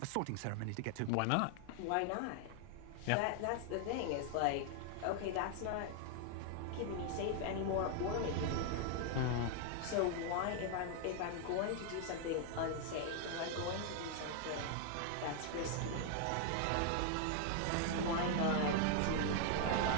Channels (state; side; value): different; both; correlation 0.00